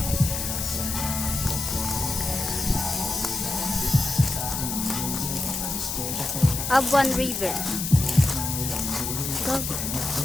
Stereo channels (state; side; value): noise; left; hiss, 3 dB below the sound